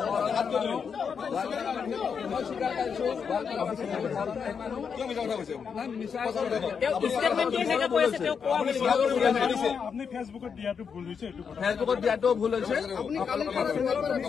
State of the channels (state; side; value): quieter; right; 6.4 dB